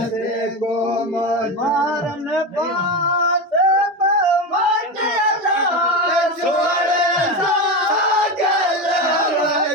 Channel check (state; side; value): normal; both; correlation 0.18